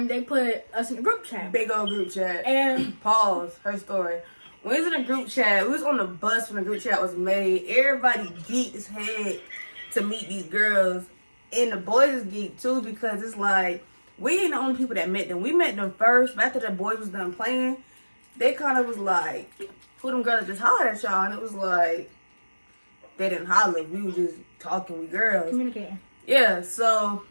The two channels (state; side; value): inverted; both; correlation -1.00